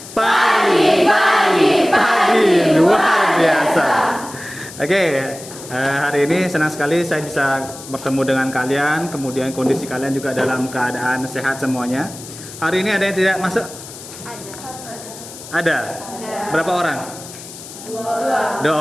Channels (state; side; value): noise; left; hiss, 15 dB below the sound